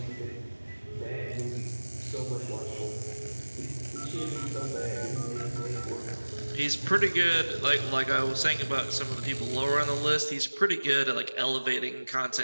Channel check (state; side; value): inverted; both; correlation -1.00